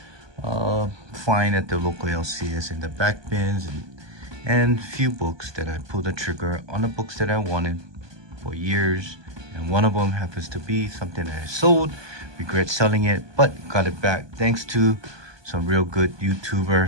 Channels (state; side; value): late; left; 1.2 ms